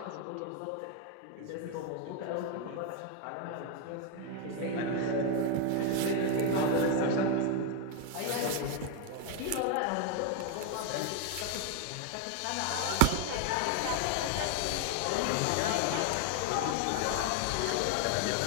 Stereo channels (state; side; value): different; both; correlation 0.01